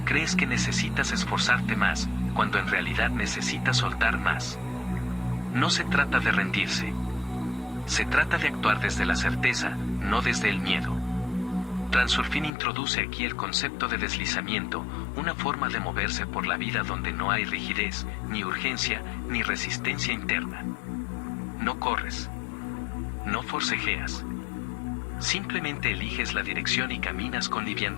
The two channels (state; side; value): drops out; right; at 12.5 s